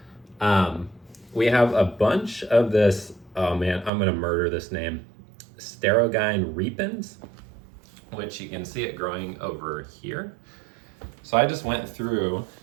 We have a bunch of this, oh man, I'm gonna murder this name, Sterogine repens, which you can see it growing over here. So I just went through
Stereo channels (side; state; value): left; drops out; at 3.9 s